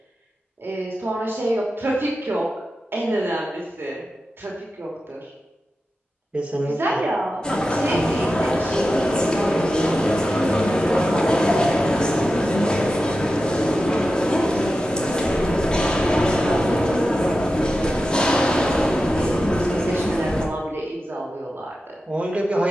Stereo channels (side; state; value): both; normal; correlation 0.92